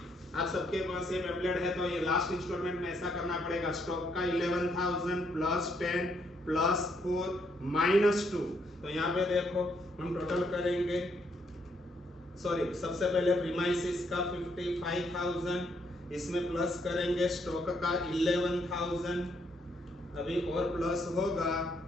आप सबके पास ये पैम्फलेट है, तो ये लास्ट इंस्टॉलमेंट में ऐसा करना पड़ेगा, स्टॉक का 11,000 + 10 + 4 - 2, तो यहाँ पे देखो हम टोटल करेंगे सॉरी सबसे पहले प्रीमाइसिस का 55,000, इसमें प्लस करेंगे स्टॉक का 11,000, अभी और प्लस होगा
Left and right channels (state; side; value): normal; both; correlation 0.73